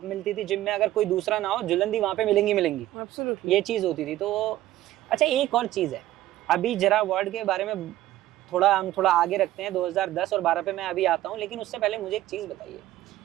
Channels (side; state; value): left; quieter; 14.6 dB